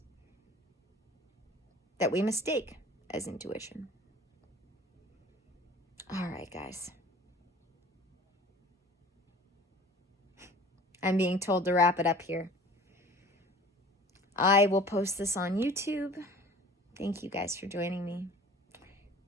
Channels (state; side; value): normal; both; correlation 0.45